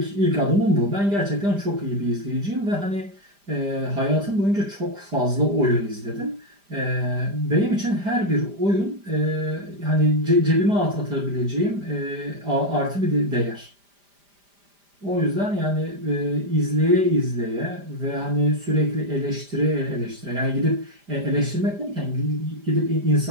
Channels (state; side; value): late; left; 5.0 ms